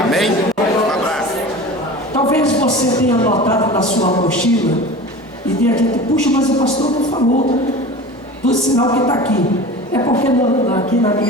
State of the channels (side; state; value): both; normal; correlation 0.35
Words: Amém? Um abraço. Talvez você tenha notado na sua mochila e tenha dito, puxa, mas o pastor não falou do sinal que está aqui. É porque aqui nas